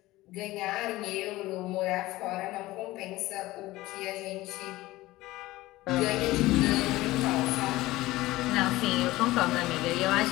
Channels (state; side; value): quieter; right; 18.1 dB